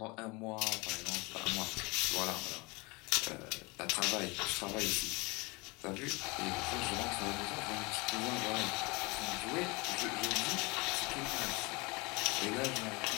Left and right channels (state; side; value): quieter; right; 26.5 dB